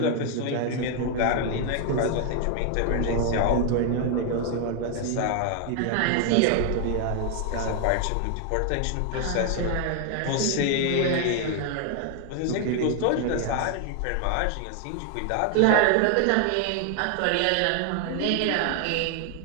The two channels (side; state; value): both; different; correlation 0.00